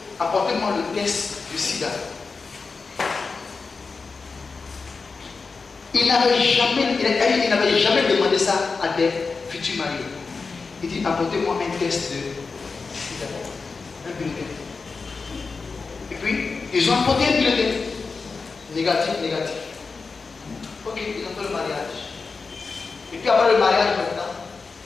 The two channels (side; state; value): right; quieter; 4.5 dB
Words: apportez-moi le test du sida. Il n'avait jamais demandé ça à des futurs mariés. Il dit, apportez-moi un test de sida, un bulletin. Et puis, ils ont apporté un bulletin. Négatif. Ok, ils ont fait le mariage. Et puis après le mariage maintenant,